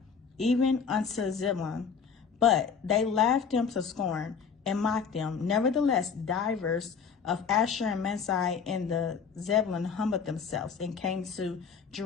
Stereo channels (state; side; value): quieter; right; 6.3 dB